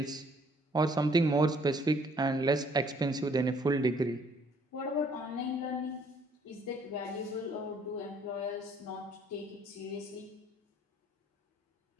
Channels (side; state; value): both; normal; correlation 0.62